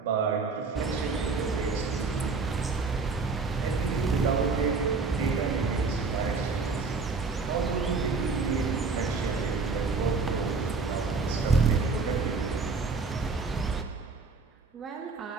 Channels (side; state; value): left; quieter; 4.4 dB